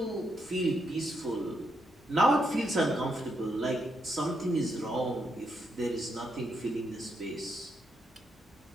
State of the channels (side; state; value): both; normal; correlation 0.80